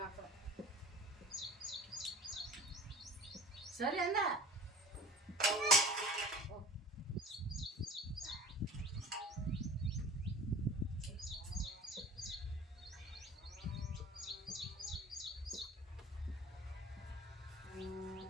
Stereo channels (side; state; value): both; normal; correlation 0.42